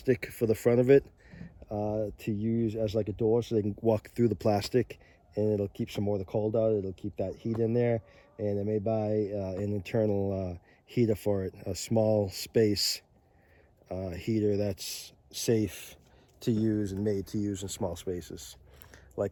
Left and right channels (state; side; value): identical; both; correlation 1.00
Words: for the front of it to use as like a door so they can walk through the plastic, and it'll keep some more of the cold out. It'll keep that heat in there, and I may buy an internal heater for it, a small space heater that's safe to use and made to use in small spaces,